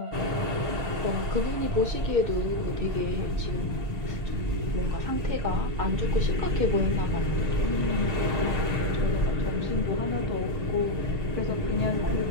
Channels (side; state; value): left; late; 6.5 ms